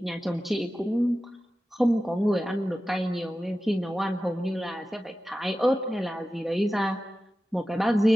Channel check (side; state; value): both; normal; correlation 0.94